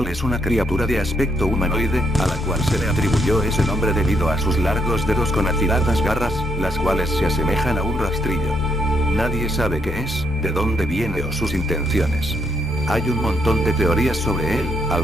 es una criatura de aspecto humanoide, a la cual se le atribuyó ese nombre debido a sus largos dedos con afiladas garras, las cuales se asemejan a un rastrillo. Nadie sabe qué es, de dónde viene o sus intenciones. Hay un montón de teorías sobre él,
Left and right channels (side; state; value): both; normal; correlation 0.75